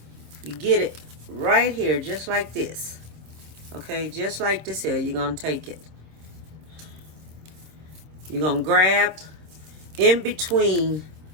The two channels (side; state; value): left; late; 26 ms